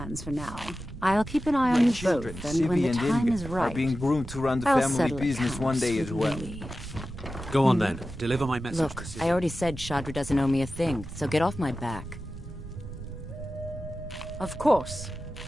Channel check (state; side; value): noise; right; rumble, 13 dB below the sound